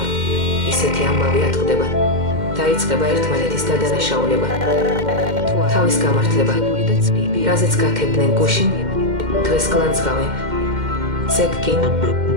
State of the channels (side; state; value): left; late; 2.1 ms